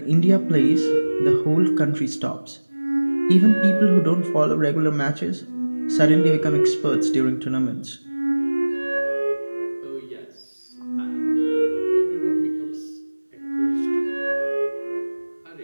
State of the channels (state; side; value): inverted; both; correlation -1.00